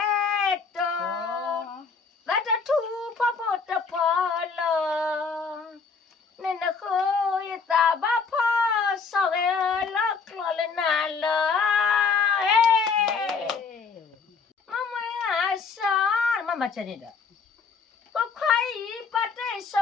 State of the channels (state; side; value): quieter; right; 5.1 dB